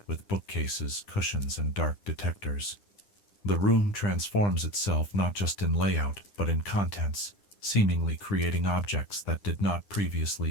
with bookcases, cushions, and dark detectors. The room transforms itself not just in layout, but in contents, seemingly creating objects that did not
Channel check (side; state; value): right; late; 9.9 ms